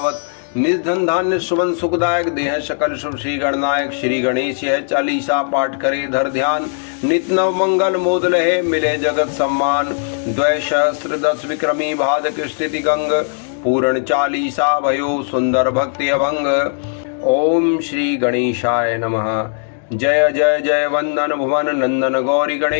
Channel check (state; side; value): silent; right; digital silence